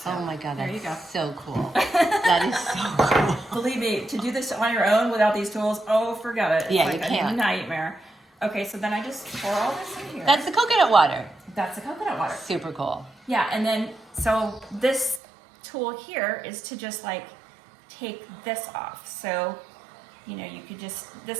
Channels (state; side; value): drops out; left; at 15.2 s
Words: Oh my God, there you go. that's so cool. That is so cool. Believe me, to do this on your own without these tools, oh, forget it. It's Yeah, like you can't. a nightmare. Okay, so then I just pour all this in here. That's the coconut water. That's the coconut water. Super cool. Yeah, and then, so this tool here is to just like take this off. So, you know, you could just,